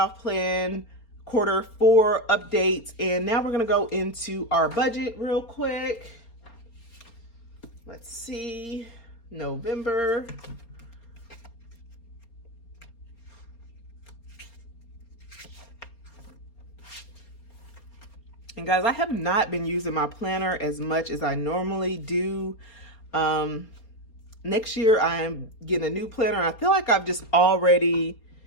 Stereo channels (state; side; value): late; right; 4.3 ms